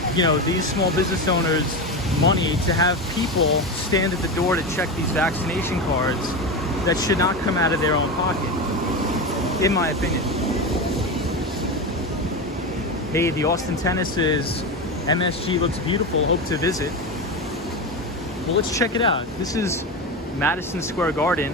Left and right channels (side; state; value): both; normal; correlation 0.19